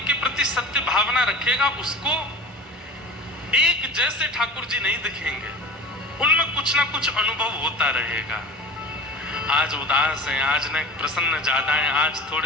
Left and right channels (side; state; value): both; normal; correlation 0.35